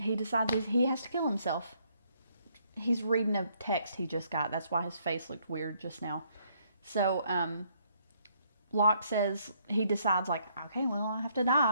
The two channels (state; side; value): inverted; both; correlation -0.69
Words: decides he has to kill himself. He's reading a text he just got. That's why his face looked weird just now. So Locke says, he decides, like, okay, well, I have to